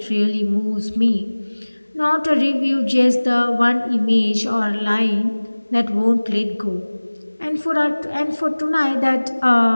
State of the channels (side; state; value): both; inverted; correlation -1.00